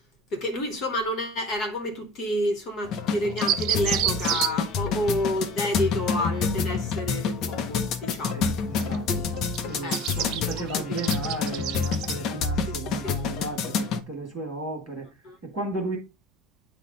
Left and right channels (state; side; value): normal; both; correlation 0.41